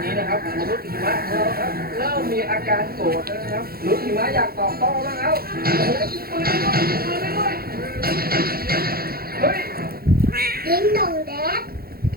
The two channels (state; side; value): late; left; 0.44 ms